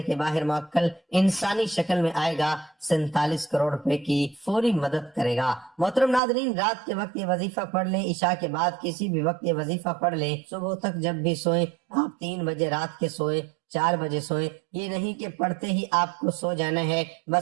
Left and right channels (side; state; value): left; drops out; at 6.2 s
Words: کے باہر موکل انسانی شکل میں آئے گا، 47 کروڑ روپے کی فوری مدد کرے گا۔ محترم ناظرین، رات کے وقت یہ وظیفہ پڑھ لیں، عشاء کے بعد کسی بھی وقت یہ وظیفہ پڑھ لیں، صبح تک جب بھی سوئیں، آپ 3 بجے رات کے سوئیں، 4 بجے سوئیں، یہ نہیں کہ پڑھتے ہی آپ کو سو جانا ہے،